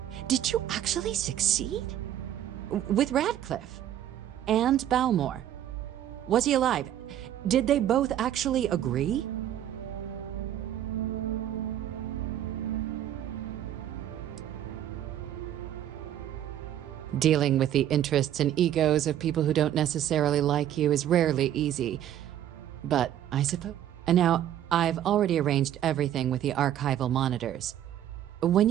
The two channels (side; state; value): left; quieter; 11.3 dB